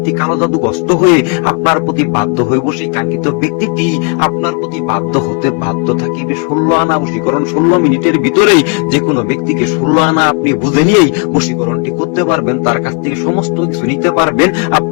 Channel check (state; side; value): quieter; right; 35.4 dB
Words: কালো জাদুগ্রস্ত হয়ে আপনার প্রতি বাধ্য হইব। সেই কাঙ্ক্ষিত ব্যক্তিটি আপনার প্রতি বাধ্য হতে বাধ্য থাকিবে। 16 আনা বশীকরণ 16 মিনিটের ভিতরেই যে কোনো ব্যক্তিকে 16 আনা আপনি বুঝে নিয়েই বশীকরণটি করতে পারবেন। তার কাছ থেকে সমস্ত কিছু নিতে পারবেন।